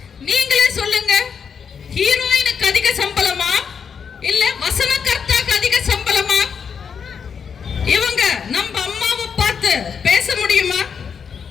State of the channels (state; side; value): quieter; right; 6.7 dB